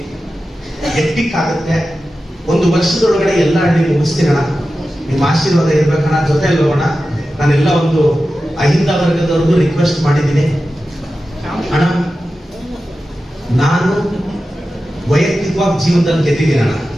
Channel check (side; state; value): both; normal; correlation 0.93